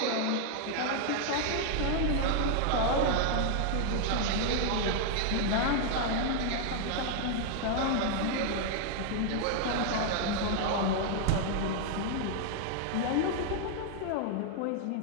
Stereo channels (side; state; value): both; different; correlation 0.00